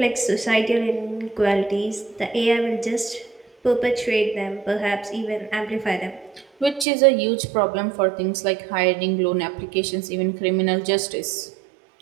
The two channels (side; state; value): left; drops out; at 6.9 s